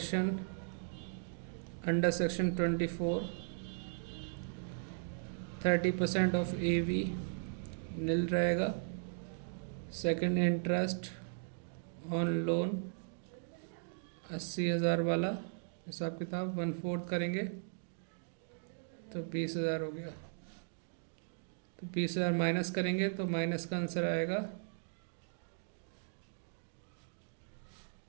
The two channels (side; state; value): left; silent; digital silence